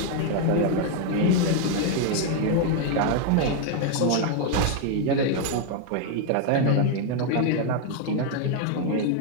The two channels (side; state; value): both; different; correlation 0.01